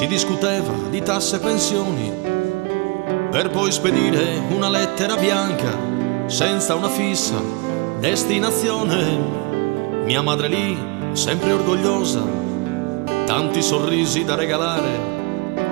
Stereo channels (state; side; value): quieter; left; 28.2 dB